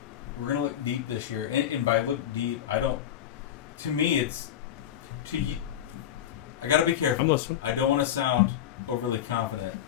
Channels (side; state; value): right; quieter; 10.6 dB